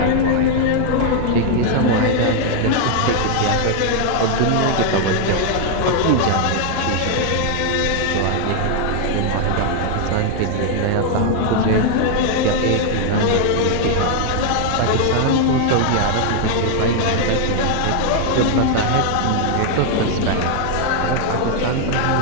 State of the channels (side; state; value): both; different; correlation 0.00